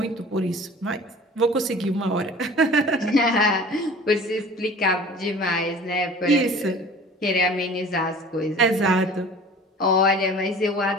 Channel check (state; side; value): normal; both; correlation 0.44